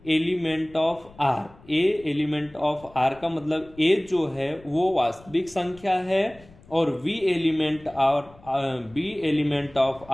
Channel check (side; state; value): left; noise; rumble, 24 dB below the sound